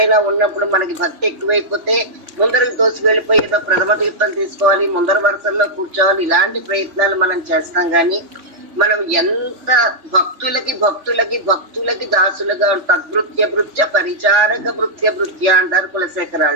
ఉన్నప్పుడు మనకి భక్తి ఎక్కువైపోతే ముందరకు దోసి వెళ్ళిపోయి ఏదో ప్రథమ తీర్థం తీసుకోవాలి, ముందర వరుసల్లో కూర్చోవాలి, ఇలాంటి ప్రయత్నాలు మనం చేస్తాం. కానీ మనం ఎంత భక్తులకి దాసులుగా తద్భృత్య భృత్య పరిచారక భృత్య భృత్య అంటారు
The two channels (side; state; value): left; late; 3.6 ms